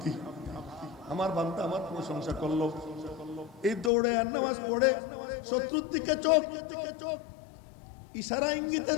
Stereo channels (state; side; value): drops out; right; at 3.9 s